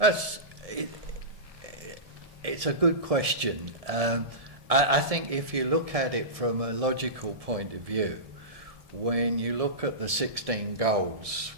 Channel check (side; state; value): left; late; 1.7 ms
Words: a good question. I think if you look at it from a logical point of view, when you look at the 16 goals,